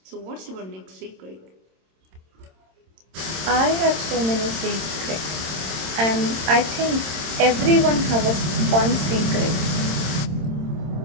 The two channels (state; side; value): late; left; 26 ms